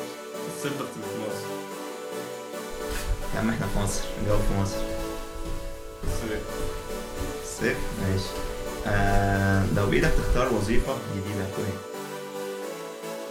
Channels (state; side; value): identical; both; correlation 1.00